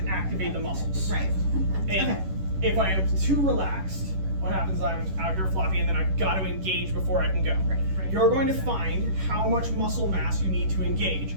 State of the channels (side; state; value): left; late; 11 ms